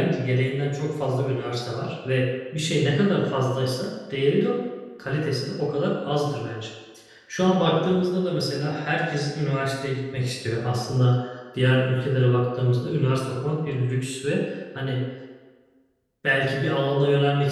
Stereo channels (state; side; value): identical; both; correlation 1.00